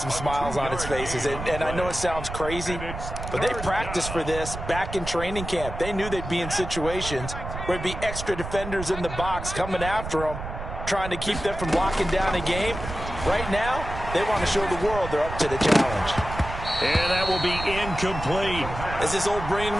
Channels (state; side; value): noise; right; rumble, 8 dB below the sound